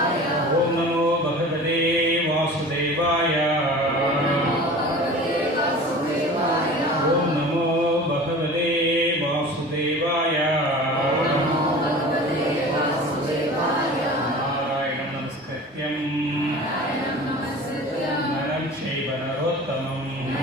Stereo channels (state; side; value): normal; both; correlation 0.39